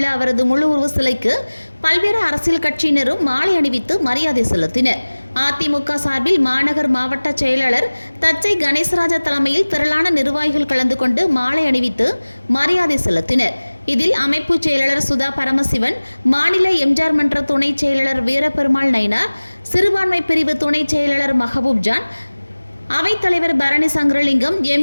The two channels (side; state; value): both; inverted; correlation -1.00